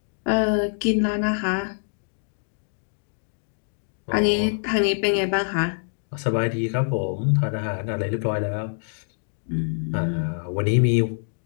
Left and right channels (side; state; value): right; silent; digital silence